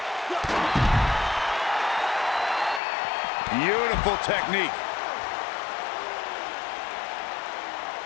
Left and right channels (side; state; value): right; drops out; at 2.8 s